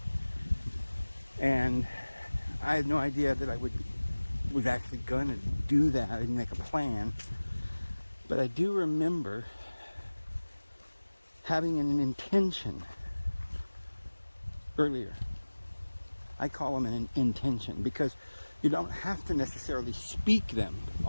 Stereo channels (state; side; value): inverted; both; correlation -1.00